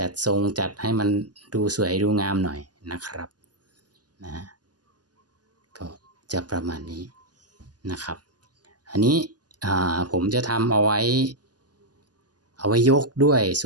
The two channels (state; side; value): late; left; 0.69 ms